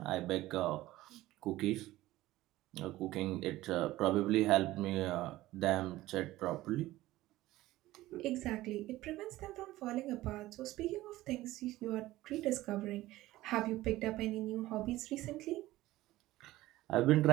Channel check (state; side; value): quieter; left; 16.7 dB